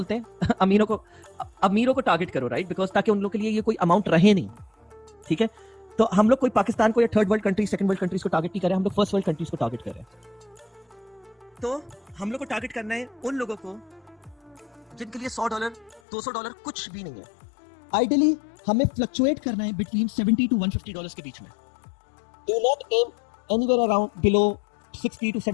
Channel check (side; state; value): right; drops out; at 16.0 s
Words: हैं? अमीरों को टारगेट करो, राइट? बिकॉज ताकि उन लोग के लिए ये कोई अमाउंट रहे नहीं, ठीक है? तो हम लोग कोई पाकिस्तान को या third world countries, second world countries को टारगेट नहीं कर रहे, हम लोग फर्स्ट वर्ल्ड कंट्रीज को टारगेट कर रहे हैं। तो हम लोग को टारगेट करना है उन लोगों को जिनके लिए $100 $200 कुछ भी नहीं है। आइडियली हमें फ्लक्चुएट करना है बिटवीन $70 to $150 के बीच में। Do not aim anywhere around below $60 to